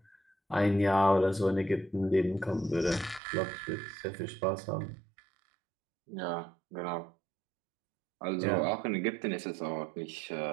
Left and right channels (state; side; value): drops out; left; at 3.2 s